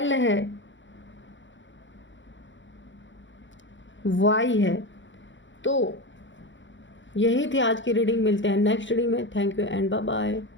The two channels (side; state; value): right; late; 0.54 ms